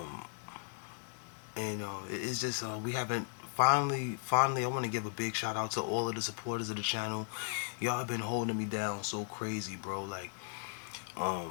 It's just we haven't finally I want to give a big shout out to all of the supporters of the channel. Y'all have been holding me down so crazy, bro. Like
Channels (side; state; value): right; silent; digital silence